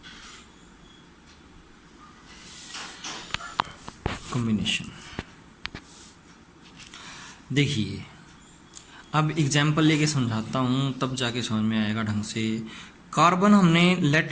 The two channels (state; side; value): identical; both; correlation 1.00